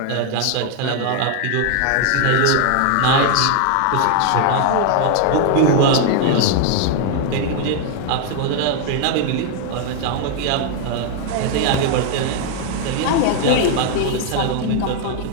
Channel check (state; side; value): different; both; correlation 0.00